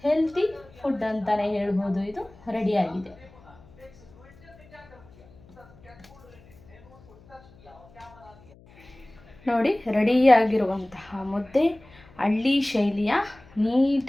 ಹೆಲ್ತಿ ಫುಡ್ ಅಂತಲೇ ಹೇಳ್ಬೋದು. ಇದು ರೆಡಿಯಾಗಿದೆ. ನೋಡಿ ರೆಡಿಯಾಗಿರುವಂತಹ ಮುದ್ದೆ ಹಳ್ಳಿ ಶೈಲಿಯ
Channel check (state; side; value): noise; left; hum, 25 dB below the sound